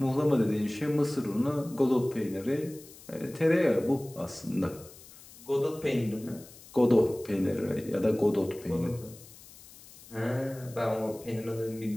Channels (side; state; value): left; noise; hiss, 20 dB below the sound